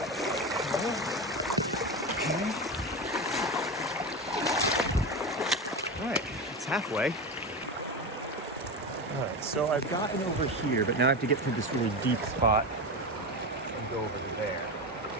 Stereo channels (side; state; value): both; normal; correlation 0.20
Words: Okay. All right, it's halfway. All right, so I've gotten over here, but now I have to get through this really deep spot and go over to there.